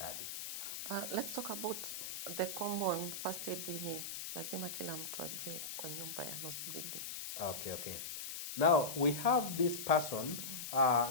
Let's talk about the common first aid yenye lazima kila mtu ajue kwa nyumba ya nose bleeding. Okay. Now we have this person.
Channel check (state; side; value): noise; left; hiss, 6 dB below the sound